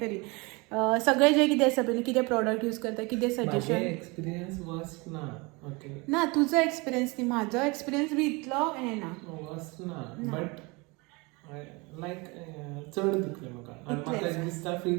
तरी सगळें जें कितें आसा पळय कितें प्रॉडक्ट यूज करता कितें सजेशन एक्सपिरियन्स वर्स्ट ना ओके ना तुजो एक्सपिरियन्स न्ही म्हाजो एक्सपिरियन्स बी इतलो हें ना वर्स्ट ना बट लायक चड दुखलें म्हाका आनी म्हाका दिसता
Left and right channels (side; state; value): left; quieter; 26.8 dB